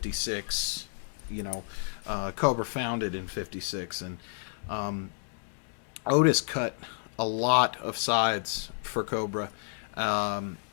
Cobra founded in 56, and Otis cut a lot of sides for Cobra,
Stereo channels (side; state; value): right; silent; digital silence